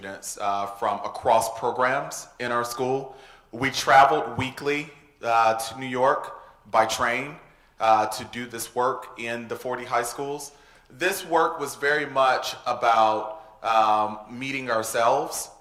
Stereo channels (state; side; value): identical; both; correlation 1.00